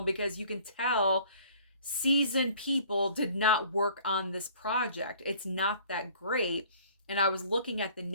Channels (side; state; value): both; inverted; correlation -0.52